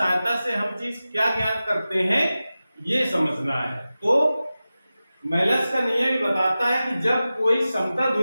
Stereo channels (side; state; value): both; inverted; correlation -0.95